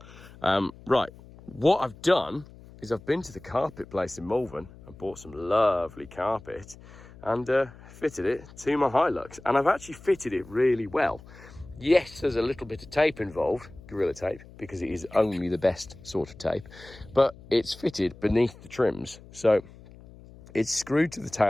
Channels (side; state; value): left; noise; hum, 20 dB below the sound